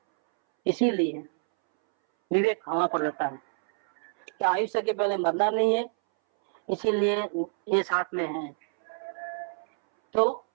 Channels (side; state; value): left; silent; 60 dB below the other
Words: इसीलिए विवेक हवा पर रहता है कि आयुष्य के पहले मरना नहीं है, इसीलिए ये साथ में है तो